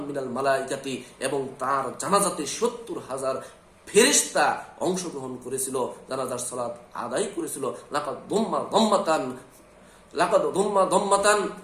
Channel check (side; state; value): both; identical; correlation 1.00